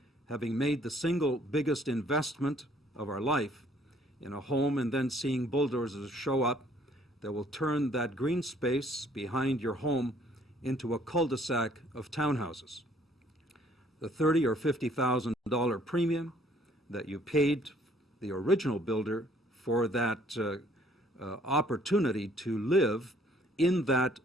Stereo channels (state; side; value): normal; both; correlation 0.61